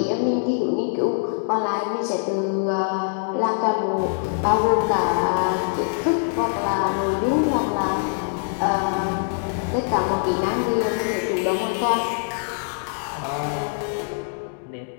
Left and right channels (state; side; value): silent; right; digital silence